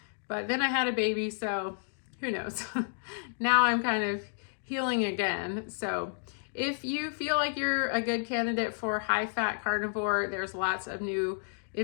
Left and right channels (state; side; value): silent; right; digital silence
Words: but then I had a baby, so who knows. Now I'm kind of healing again. So if you feel like you're a good candidate for high-fat carnivore, there's lots of new